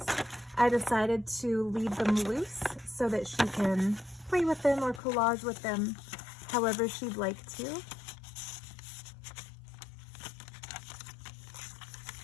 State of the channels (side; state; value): right; drops out; at 5.0 s